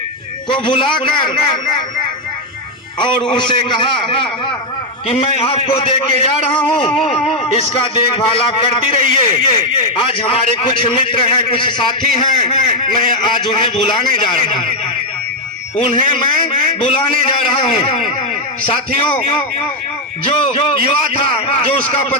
को बुलाकर और उसे कहा कि मैं आपको दे के जा रहा हूँ, इसका देखभाल आप करती रहिए। आज हमारे कुछ मित्र हैं, कुछ साथी हैं, मैं आज उन्हें बुलाने जा रहा हूँ। उन्हें मैं बुलाने जा रहा हूँ। साथियों, जो युवा था, जो उसका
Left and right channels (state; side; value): normal; both; correlation 0.02